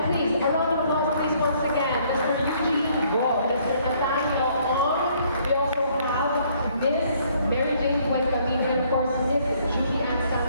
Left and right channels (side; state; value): both; inverted; correlation -0.65